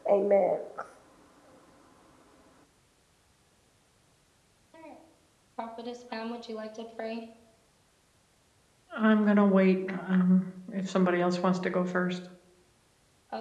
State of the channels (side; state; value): both; identical; correlation 1.00